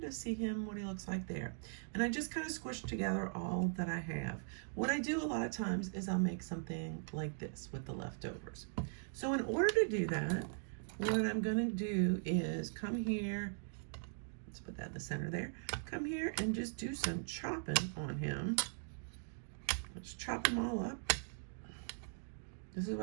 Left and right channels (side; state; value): left; silent; digital silence